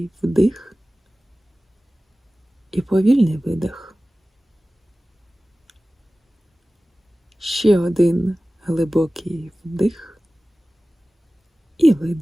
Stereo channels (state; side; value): normal; both; correlation 0.97